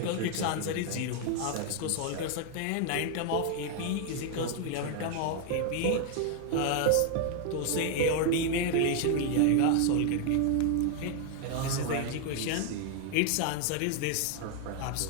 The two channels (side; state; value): both; different; correlation 0.00